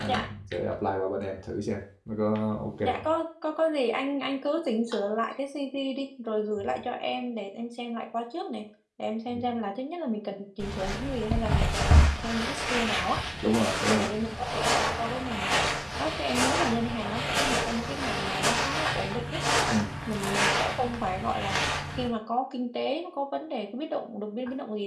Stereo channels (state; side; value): identical; both; correlation 1.00